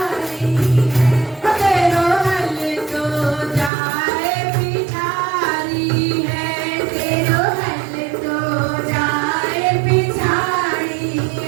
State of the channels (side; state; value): left; drops out; at 3.7 s